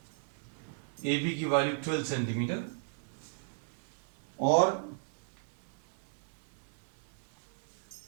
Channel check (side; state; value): left; silent; 54 dB below the other